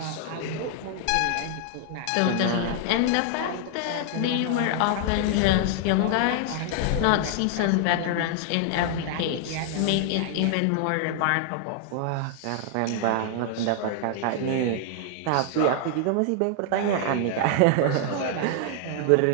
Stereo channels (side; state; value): both; different; correlation 0.00